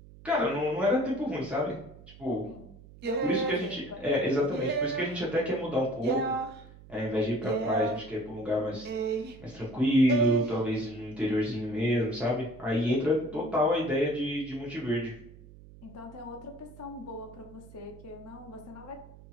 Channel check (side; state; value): right; noise; hum, 20 dB below the sound